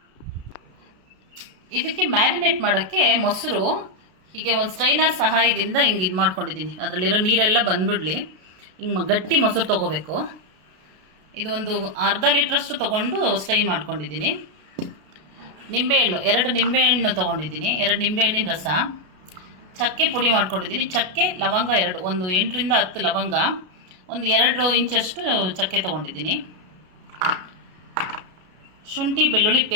ಇದಕ್ಕೆ ಮ್ಯಾರಿನೇಟ್ ಮಾಡೋಕ್ಕೆ ಮೊಸರು ಹೀಗೆ ಒಂದು ಸ್ಟ್ರೈನರ್ ಸಹಾಯದಿಂದ ಹಿಂಗೆ ಇದು ಮಾಡ್ಕೊಂಡಿದ್ದೀನಿ. ಅದರಲ್ಲಿರೋ ನೀರೆಲ್ಲ ಬಂದುಬಿಡಲಿ. ಹಿಂಗೆ ಗಟ್ಟಿ ಮೊಸರು ತೊಗೋಬೇಕು. ಇದು ಒಂದು ಅರ್ಧ ಲೀಟ್ರಷ್ಟು ತೊಗೊಂಡು ಸ್ಟೈನ್ ಮಾಡ್ಕೊಂಡಿದ್ದೀನಿ. ನಿಂಬೆಹಣ್ಣು 2 ನಿಂಬೆಹಣ್ಣು ತೊಗೊಂಡಿದ್ದೀನಿ. 2 ನಿಂಬೆಹಣ್ಣಿನ ರಸ, ಚಕ್ಕೆ ಪುಡಿ ಮಾಡ್ಕೊಂಡಿದ್ದೀನಿ. ಚಕ್ಕೆ ಲವಂಗ 2, ಒಂದು 8 ರಿಂದ 10 ಲವಂಗ, ಒಂದು 2 ಇಂಚಷ್ಟು ಚಕ್ಕೆ ತೊಗೊಂಡಿದ್ದೀನಿ. ಶುಂಠಿ ಬೆಳ್ಳುಳ್ಳಿ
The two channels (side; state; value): left; late; 32 ms